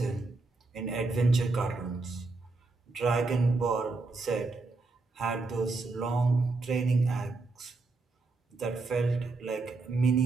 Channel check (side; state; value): left; quieter; 3.6 dB